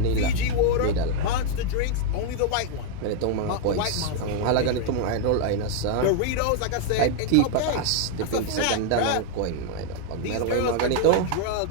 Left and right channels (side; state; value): both; different; correlation 0.00